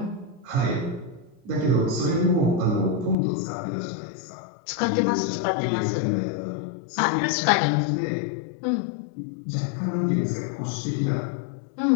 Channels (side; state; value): right; drops out; at 3.2 s